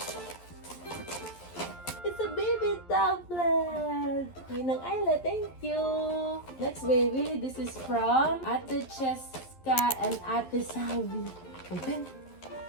It's a baby tablet! Ninang Ayla, thank you! Next baby, this is from Ate Cheska and Ate Salvi. Open!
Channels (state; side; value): late; right; 11 ms